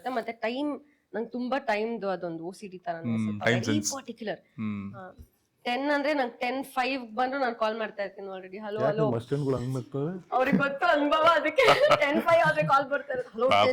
ಮತ್ತೆ ಟೈಮ್, ನಂಗೆ ತುಂಬಾ ಟೈಮ್ದು ಅದೊಂದು OCD ತರ ವೆರಿ ಪರ್ಟಿಕ್ಯುಲರ್. 10 ಅಂದ್ರೆ ನಂಗೆ 10:05 ಬಂದ್ರು ನಾನು ಕಾಲ್ ಮಾಡ್ತಾ ಇರ್ತೀನಿ ಆಲ್ರೆಡಿ. ಹಲೋ ಅವ್ರಿಗೆ ಗೊತ್ತು ಅನುಭವ, ಅದಕ್ಕೆ 10:05 ಆದ್ರೆ ಕಾಲ್ ಬರ್ತಾ ಇರುತ್ತೆ. ಹಲೋ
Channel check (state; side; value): identical; both; correlation 1.00